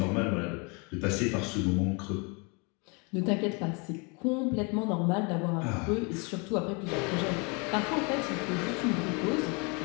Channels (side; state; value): right; quieter; 31.6 dB